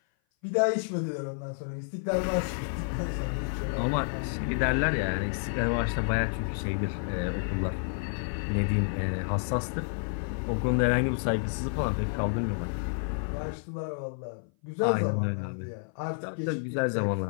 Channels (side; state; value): right; silent; 56 dB below the other